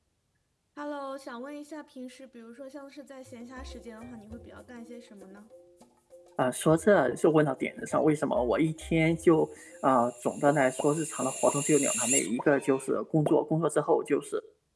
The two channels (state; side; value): identical; both; correlation 1.00